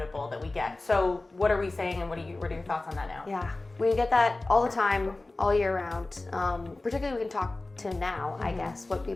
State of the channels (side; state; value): right; quieter; 3.0 dB